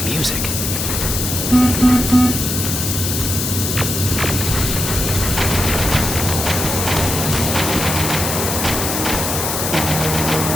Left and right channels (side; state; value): left; noise; hiss, 2 dB below the sound